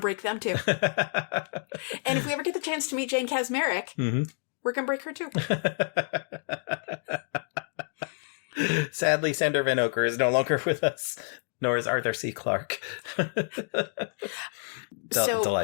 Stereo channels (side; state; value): right; silent; digital silence